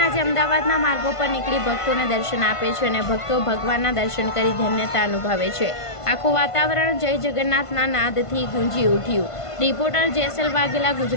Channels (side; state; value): right; late; 1.5 ms